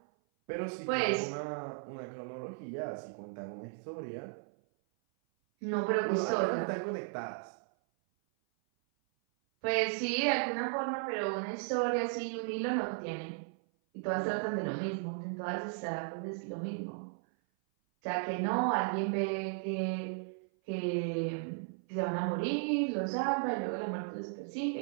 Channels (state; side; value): silent; left; 54 dB below the other